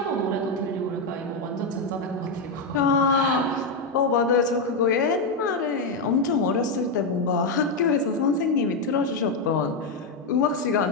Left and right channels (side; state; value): right; quieter; 3.2 dB